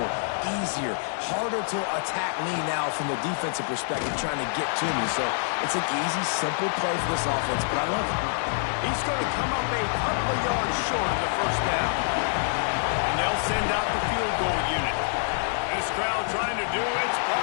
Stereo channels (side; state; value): right; silent; digital silence